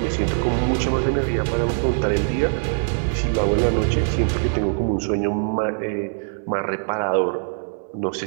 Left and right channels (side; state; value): left; silent; digital silence